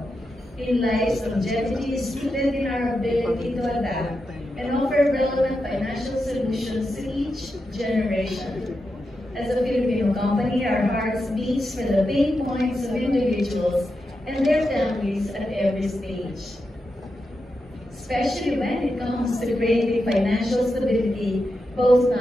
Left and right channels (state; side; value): normal; both; correlation 0.88